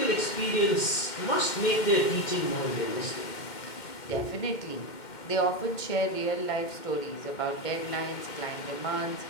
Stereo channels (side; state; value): right; late; 2.1 ms